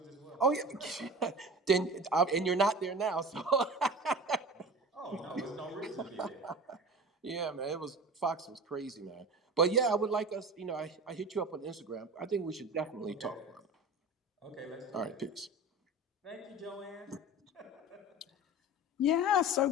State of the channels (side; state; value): both; normal; correlation 0.34